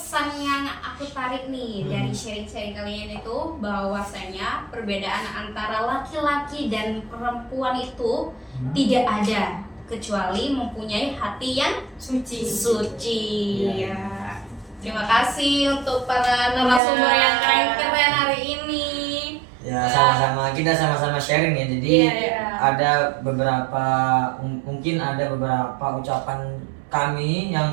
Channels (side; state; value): left; drops out; at 16.8 s